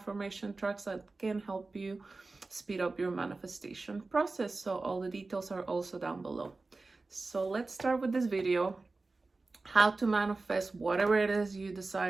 tracks that can help you speed up your manifestation process. So all the details are also down below. So let's start with this video, how to manifest whatever it is you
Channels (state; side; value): quieter; left; 3.6 dB